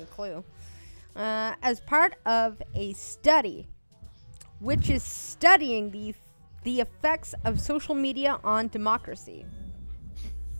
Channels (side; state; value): both; inverted; correlation -1.00